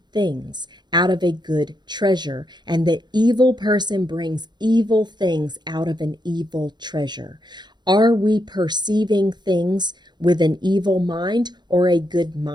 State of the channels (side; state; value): left; late; 0.21 ms